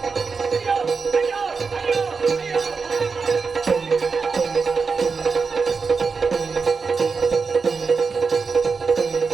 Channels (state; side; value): quieter; left; 5.0 dB